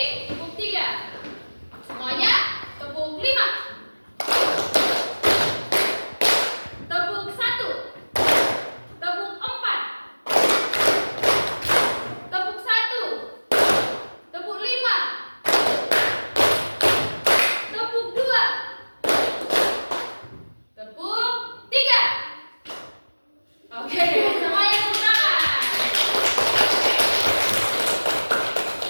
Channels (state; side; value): inverted; both; correlation -1.00